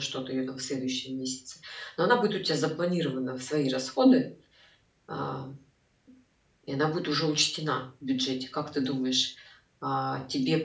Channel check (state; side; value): identical; both; correlation 1.00